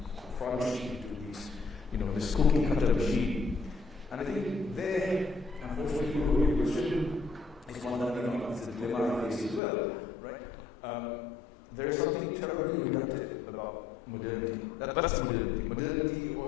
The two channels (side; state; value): right; drops out; at 9.6 s